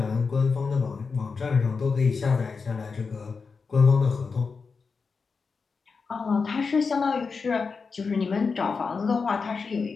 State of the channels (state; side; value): quieter; right; 4.9 dB